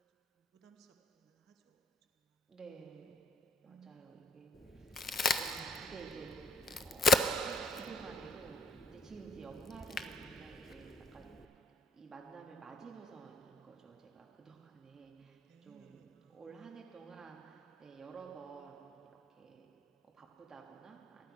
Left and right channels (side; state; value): both; normal; correlation 0.60